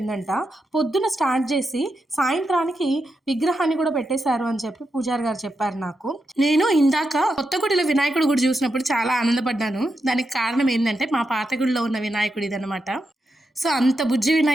పొద్దున స్టార్ట్ చేసి సాయంత్రానికి విగ్రహాన్ని కూడా పెట్టేశారు అని చెప్పి పూజారి గారు చెప్పారు నాకు. నేను ఇందాక కొత్త గుడిలో వినాయకుడి గుడి చూసినప్పుడు చాలా ఆనందపడ్డాను. దానికి కారణం ఏంటంటే మా పాత గుడిలో ఉన్న వినాయకుడి ఇదనమాట. సో అంత బుజ్జి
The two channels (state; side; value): normal; both; correlation 0.86